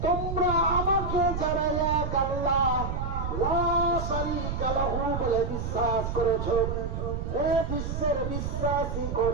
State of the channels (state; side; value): noise; right; rumble, 3 dB below the sound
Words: তোমরা আমাকে যারা এক আল্লাহ লা শারীকা লাহু বলে বিশ্বাস করেছো, হে বিশ্বের বিশ্বাসী